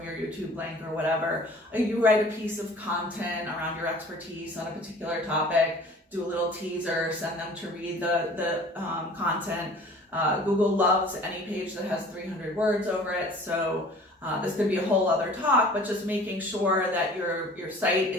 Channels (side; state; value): both; normal; correlation 0.47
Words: your YouTube link or whatever. You write a piece of content around your expertise on a particular topic, do a little teaser, send them to read the content. Google loves any page that has 300 words over it, so this could be a whole other talk, but just making sure that your site